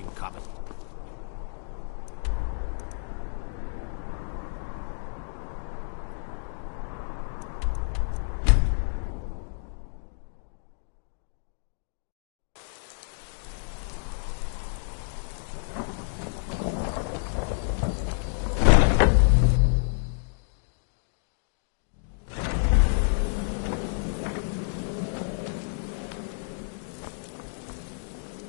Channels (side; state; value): right; silent; digital silence